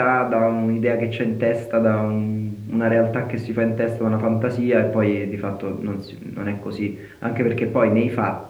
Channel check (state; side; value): identical; both; correlation 1.00